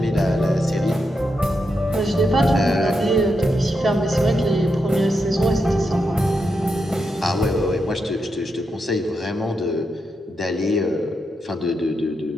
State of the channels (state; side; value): normal; both; correlation 0.84